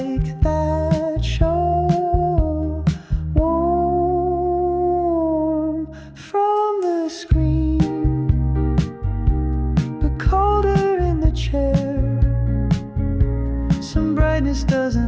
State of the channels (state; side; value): identical; both; correlation 1.00